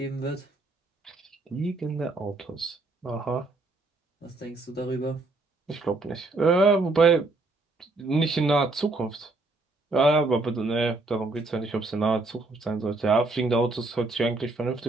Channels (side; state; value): left; quieter; 3.2 dB